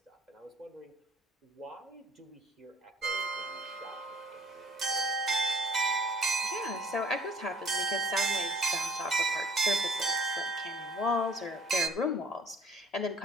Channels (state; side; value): normal; both; correlation 0.55